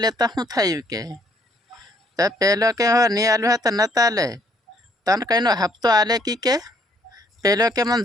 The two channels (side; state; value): both; normal; correlation 0.66